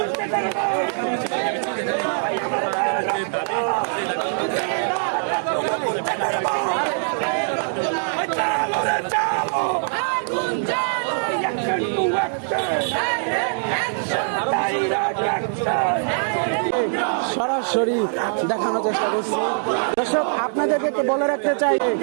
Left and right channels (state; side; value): silent; left; digital silence